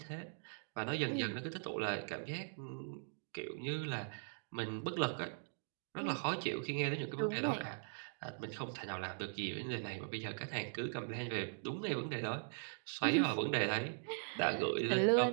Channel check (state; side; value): silent; left; digital silence